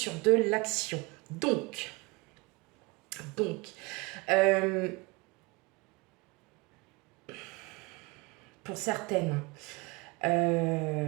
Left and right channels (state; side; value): quieter; left; 25.6 dB